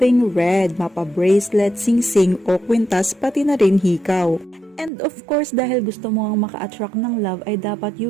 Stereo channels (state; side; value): drops out; left; at 4.9 s